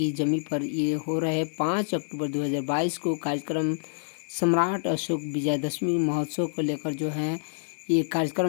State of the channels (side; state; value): right; silent; 60 dB below the other